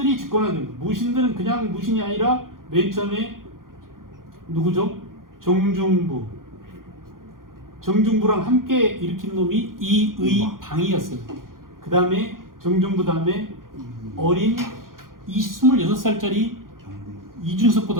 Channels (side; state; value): left; late; 0.91 ms